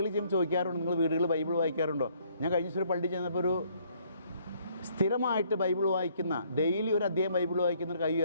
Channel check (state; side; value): inverted; both; correlation -0.65